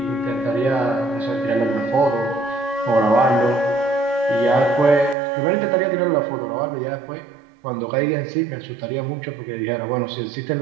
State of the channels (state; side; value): drops out; left; at 5.2 s